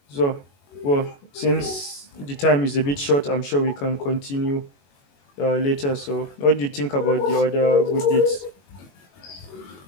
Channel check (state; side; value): late; right; 21 ms